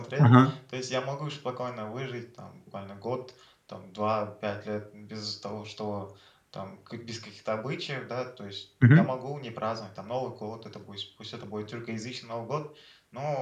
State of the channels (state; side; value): identical; both; correlation 1.00